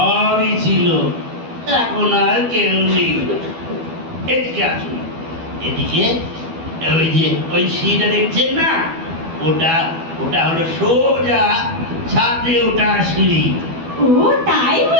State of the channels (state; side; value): late; left; 12 ms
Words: ছিল, এখন আর কেউ নেই। এদিকে আসুন, এদিকে। ওই যে ওই সিঁড়িটা দেখছেন না, ওটা ওটা হলো সোজা ছাদে ওঠা সিঁড়ি। ও তাই